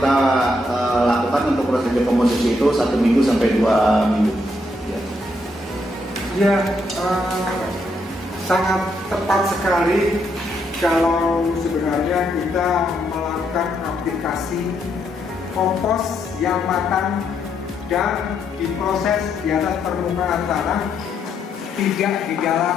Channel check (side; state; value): both; normal; correlation 0.76